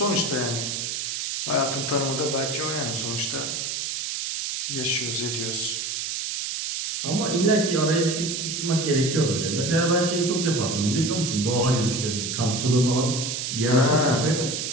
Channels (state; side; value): noise; right; hiss, 3 dB below the sound